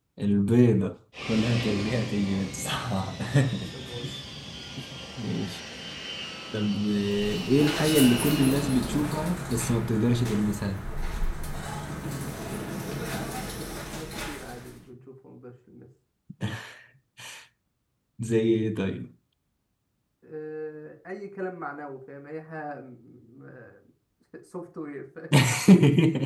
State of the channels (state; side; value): identical; both; correlation 1.00